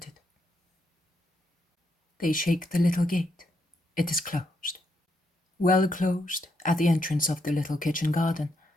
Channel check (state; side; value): normal; both; correlation 0.78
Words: They shake the little gate. It is closed. Well closed at the entrance of the little kitchen garden,